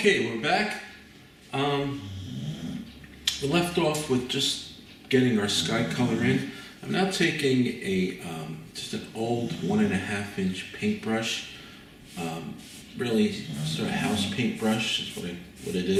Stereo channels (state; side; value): identical; both; correlation 1.00